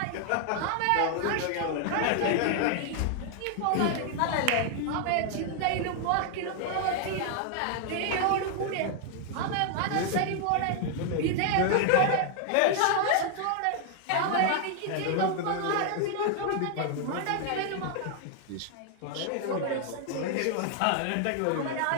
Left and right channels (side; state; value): both; different; correlation 0.00